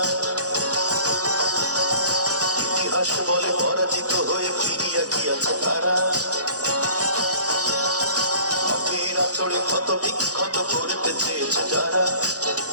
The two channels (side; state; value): left; late; 0.67 ms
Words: ইতিহাস বলে পরাজিত হয়ে ফিরিয়া গিয়াছে তারা। নদীর আচরে ক্ষত বিক্ষত করিতে চেয়েছে যারা,